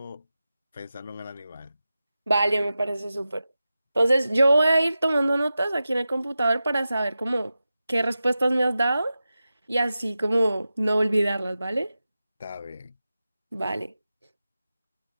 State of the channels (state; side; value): inverted; both; correlation -0.93